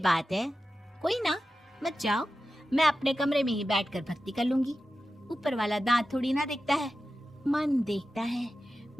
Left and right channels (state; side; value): normal; both; correlation 0.93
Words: है। कोई ना, मत जाओ, मैं अपने कमरे में ही बैठकर भक्ति कर लूंगी। ऊपर वाला दांत थोड़ी ना देखता है, मन देखता है,